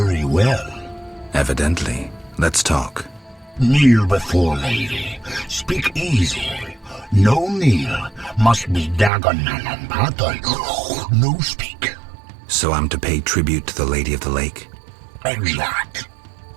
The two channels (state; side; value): drops out; left; at 9.1 s